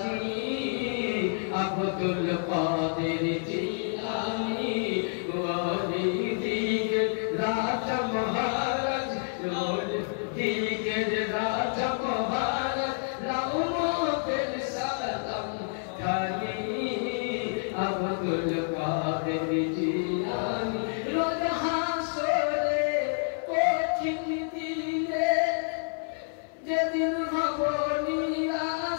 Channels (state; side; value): silent; right; 59 dB below the other